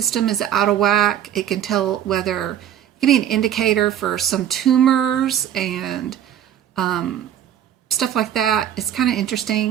is out of whack. It can tell whether it can be an indicator for some tumors and stuff like that. It's kind of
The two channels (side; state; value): left; quieter; 10.4 dB